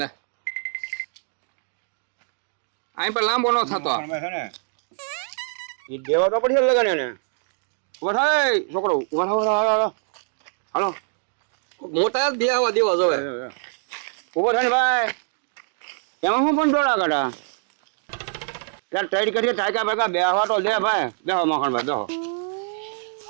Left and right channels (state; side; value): silent; left; 57 dB below the other